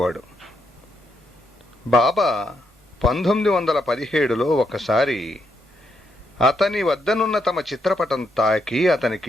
బాబా 1917లో ఒకసారి అతని వద్దనున్న తమ చిత్రపటం తాకి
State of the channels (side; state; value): both; normal; correlation 0.78